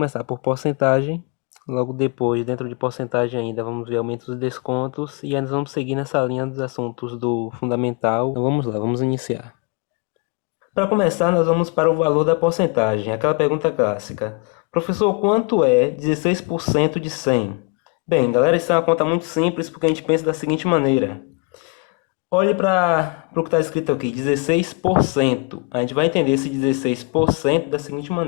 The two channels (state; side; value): quieter; right; 30.3 dB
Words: por porcentagem. Logo depois, dentro de porcentagem ainda, vamos ver aumentos e descontos. E ainda vamos seguir nessa linha dos assuntos do fundamental. Então vamos lá, vamos iniciar. Para começar, nós vamos para o valor da porcentagem, aquela pergunta clássica. Professor, quanto é 16% de 100? Bem, galera, isso é uma conta muito simples porque a gente pensa da seguinte maneira. Olhe para o que está escrito aqui, 16%. A gente vai entender esse 16% da seguinte